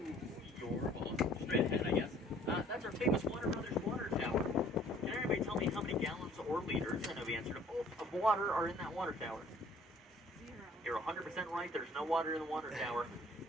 your, well, straight ahead, I guess, that's our famous Warner Brothers water tower. Can everybody tell me how many gallons or liters, I know the answer to both, of water are in that water tower? 0. You're 100% right. There's no water in the water tower.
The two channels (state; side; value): normal; both; correlation 0.56